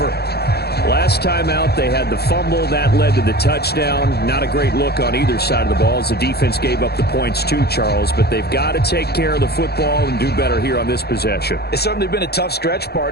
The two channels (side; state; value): right; late; 0.47 ms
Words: Last time out, they had the fumble. That led to the touchdown. Not a great look on either side of the ball as the defense gave up the points too, Charles. But they've got to take care of the football and do better here on this possession. It's certainly been a tough stretch,